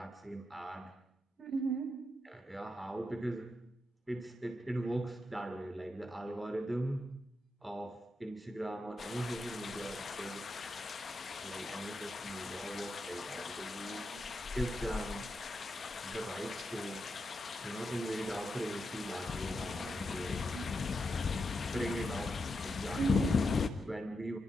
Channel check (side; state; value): both; normal; correlation 0.85